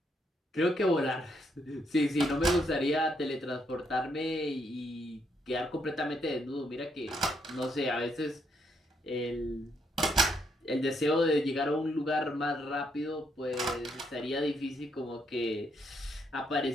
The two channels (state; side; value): normal; both; correlation 0.75